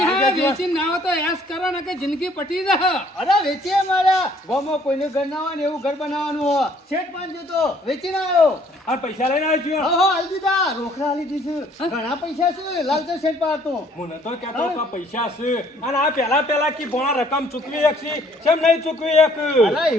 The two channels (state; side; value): normal; both; correlation 0.61